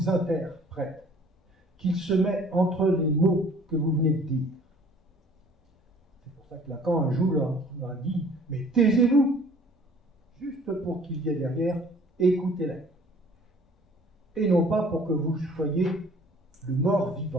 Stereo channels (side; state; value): both; normal; correlation 0.53